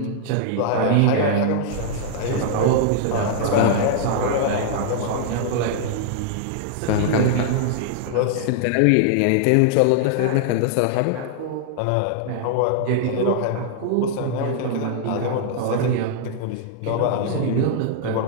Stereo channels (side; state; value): both; different; correlation -0.01